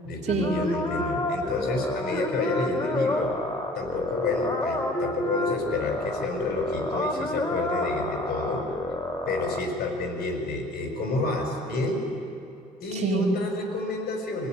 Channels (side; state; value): both; normal; correlation 0.49